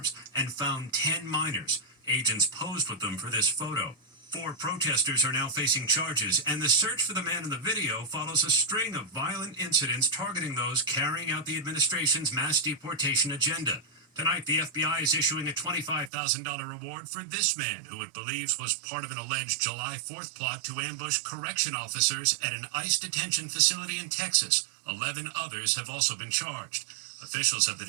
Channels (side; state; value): left; drops out; at 16.1 s